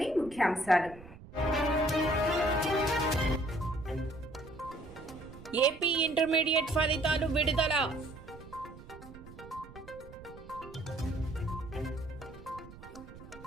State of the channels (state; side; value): noise; right; rumble, 17 dB below the sound